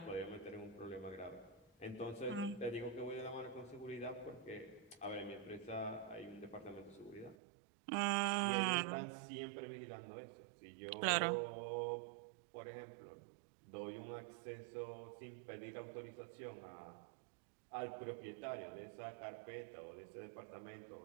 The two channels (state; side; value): drops out; left; at 7.4 s